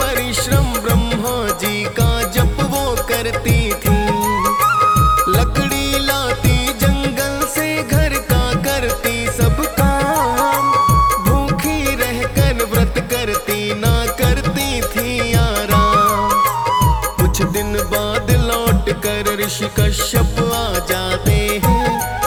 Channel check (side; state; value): both; identical; correlation 1.00